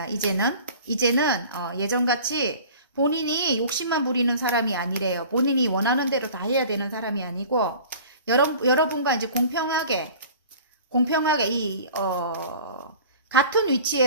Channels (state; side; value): inverted; both; correlation -0.44